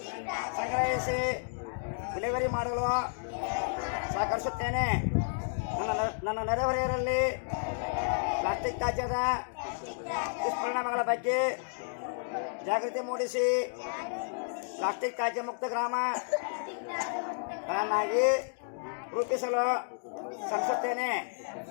ಸಂಗ್ರಹಿಸಿ ವಿಲೇವಾರಿ ಮಾಡಲು ಸಹಕರಿಸುತ್ತೇನೆ. ನನ್ನ ನೆರೆಹೊರೆಯರಲ್ಲಿ ಪ್ಲಾಸ್ಟಿಕ್ ತ್ಯಾಜ್ಯದ ದುಷ್ಪರಿಣಾಮಗಳ ಬಗ್ಗೆ ಜಾಗೃತಿ ಮೂಡಿಸಿ ಪ್ಲಾಸ್ಟಿಕ್ ತ್ಯಾಜ್ಯ ಮುಕ್ತ ಗ್ರಾಮಗಳನ್ನಾಗಿ ರೂಪಿಸಲು ಶ್ರಮಿಸುತ್ತೇನೆ.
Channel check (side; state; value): right; silent; digital silence